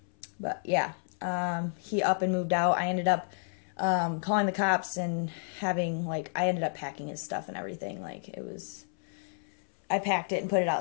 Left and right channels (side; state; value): right; silent; 57 dB below the other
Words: But yeah, he up and moved out. I ended up calling the cops and having like, I ended up packing his stuff and everything. Like it was, I packed it and put it